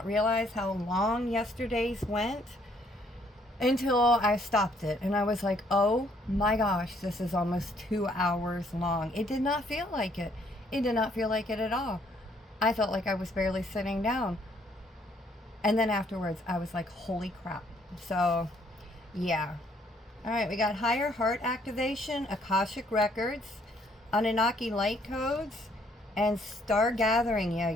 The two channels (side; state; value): both; normal; correlation 0.66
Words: realize how long yesterday's went until I stopped it. And I was like, oh my gosh, this is almost 2 hours long. It did not feel like it. It did not feel like it at all. I felt like I was barely sitting down. And then afterwards, I was like, holy crap. So Yeah. All right, we got higher heart activation, Akashic records, Anunnaki light codes, and star gathering. Yeah,